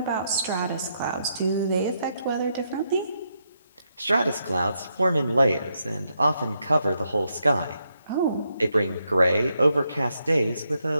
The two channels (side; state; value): both; inverted; correlation -0.80